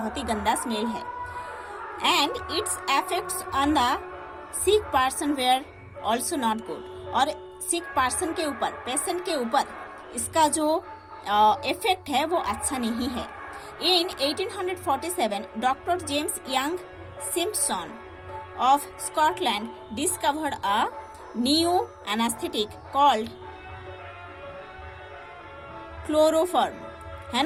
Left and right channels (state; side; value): identical; both; correlation 1.00